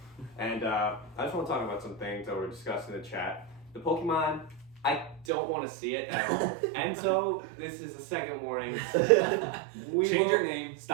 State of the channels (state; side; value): drops out; left; at 5.2 s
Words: and I just want to talk about some things that were discussed in the chat. The Pokemon, I don't want to see it at all. And so this is a second warning. Change your name.